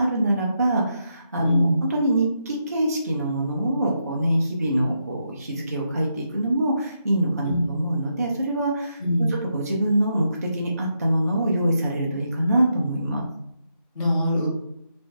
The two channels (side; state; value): both; inverted; correlation -0.81